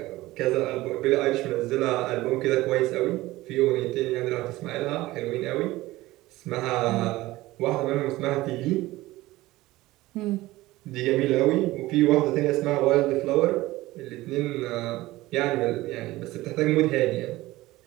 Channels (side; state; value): left; quieter; 18.1 dB